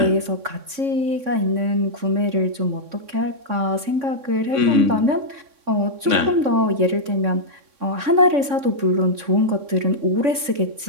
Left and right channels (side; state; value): left; late; 3.6 ms